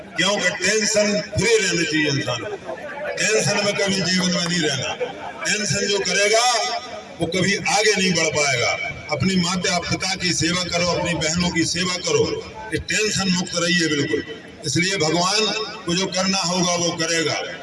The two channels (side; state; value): both; identical; correlation 1.00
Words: क्योंकि टेंशन फ्री रहना चाहिए इंसान को। टेंशन में कभी जीवन में नहीं रहना। टेंशन जो करेगा वो कभी आगे नहीं बढ़ पाएगा। अपनी माता पिता की सेवा करो, अपनी बहनों की सेवा करो, कि टेंशन मुक्त रहिए बिल्कुल। इसलिए भगवान को जो करना होगा वो करेगा।